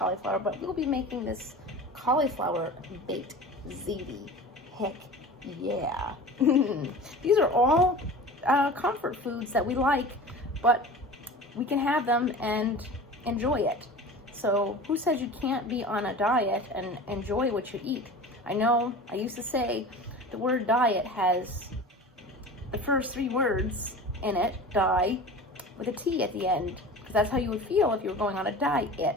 but we'll be making this cauliflower baked ziti. Heck yeah. These are all comfort foods that we like, but we can have them and enjoy it. So who says you can't be on a diet and enjoy what you eat? I know I used to say the word diet has the first 3 words in it, die, with a T at the end, because that's how you would feel if you were going on a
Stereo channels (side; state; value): both; normal; correlation 0.36